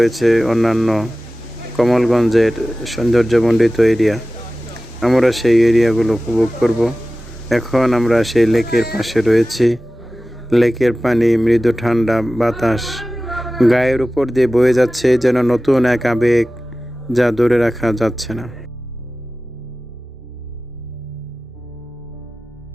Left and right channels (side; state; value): both; normal; correlation 0.96